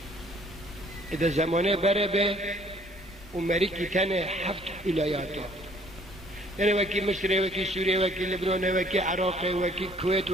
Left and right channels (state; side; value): normal; both; correlation 0.59